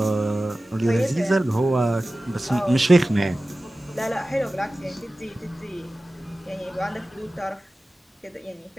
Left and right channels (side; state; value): both; normal; correlation 0.96